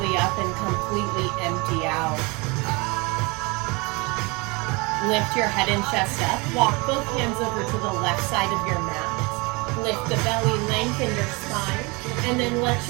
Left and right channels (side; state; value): left; quieter; 27.3 dB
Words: up and completely empty out. Lift your head and chest up. Walk both hands over to the left side of your mat. Lift the belly, lengthen your spine, and then let